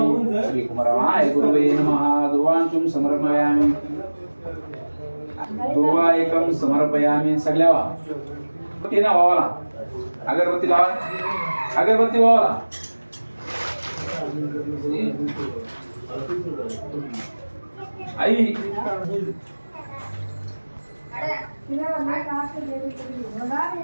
श्री कुमारमाय गुरुवे नमः दुर्वांचून् समर्पयामि दुर्वायकं समर्पयामि सगळ्या अगरबत्ती ना वावाला अगरबत्ती लावा अगरबत्ती वावाला आई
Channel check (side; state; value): both; inverted; correlation -1.00